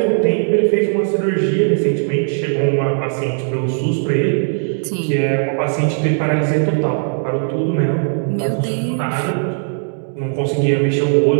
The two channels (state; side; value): silent; left; digital silence